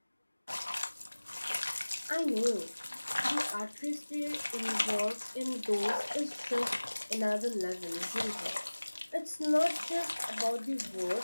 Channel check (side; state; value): both; inverted; correlation -1.00